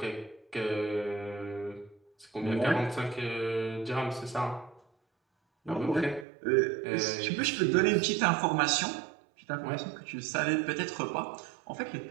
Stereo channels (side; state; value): left; drops out; at 6.2 s